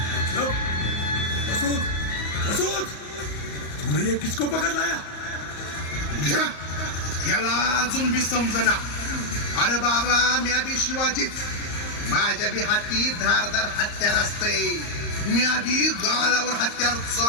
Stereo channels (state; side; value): late; right; 34 ms